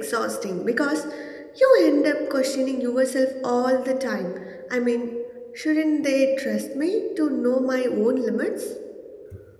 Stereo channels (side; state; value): both; identical; correlation 1.00